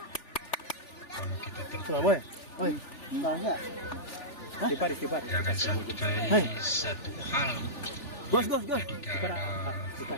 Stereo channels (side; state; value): right; late; 3.4 ms